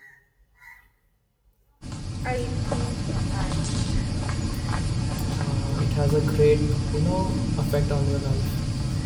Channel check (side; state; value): both; identical; correlation 1.00